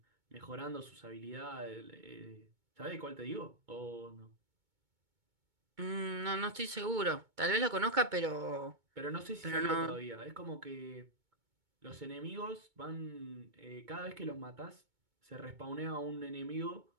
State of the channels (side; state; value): left; late; 2.2 ms